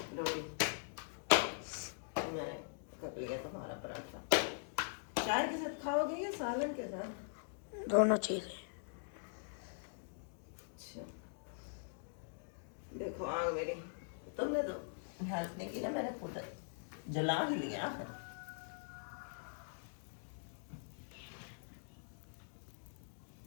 रोटी मैंने कर लिया तुम्हारा पराठा। चाय के साथ खाओगे या सालन के साथ? दोनों चीजें। अच्छा देखो आग मेरी, तुमने तो हेल्प नहीं की ना, मैंने खुद जला ही लिया आखिर।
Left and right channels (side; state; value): right; silent; digital silence